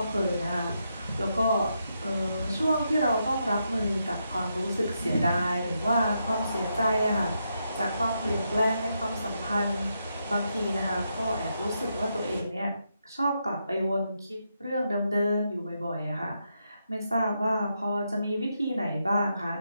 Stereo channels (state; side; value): inverted; both; correlation -0.82